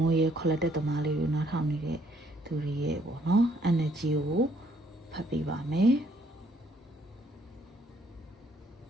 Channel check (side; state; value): both; normal; correlation 0.66